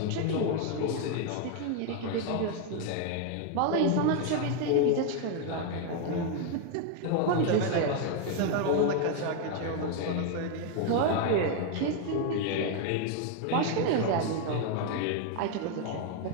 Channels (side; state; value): both; different; correlation 0.01